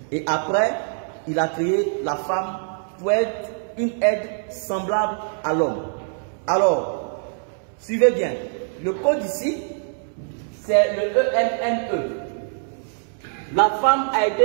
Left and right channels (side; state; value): left; silent; 63 dB below the other